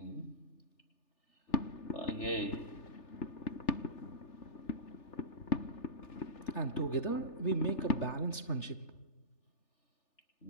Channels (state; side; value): late; right; 3.4 ms